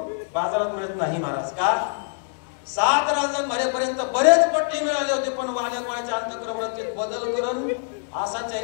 बाजारात मिळत नाही महाराज. का? 7 रांजण भरेपर्यंत बरेच पट्टे मिळाले होते पण वाल्या कोळ्याच्या अंतःकरण वृत्तीत बदल करून असाच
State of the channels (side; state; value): right; silent; 62 dB below the other